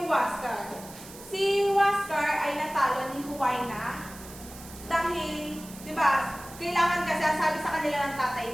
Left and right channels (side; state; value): right; noise; hiss, 17 dB below the sound